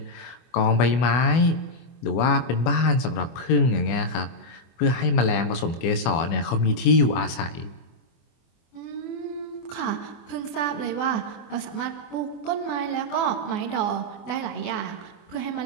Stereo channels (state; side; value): late; right; 24 ms